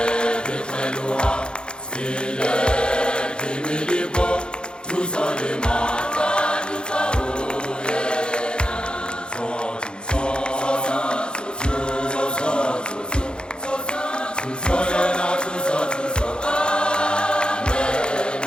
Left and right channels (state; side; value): late; right; 0.051 ms